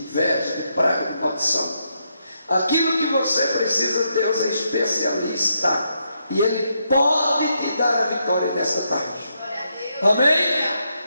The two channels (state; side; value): inverted; both; correlation -0.79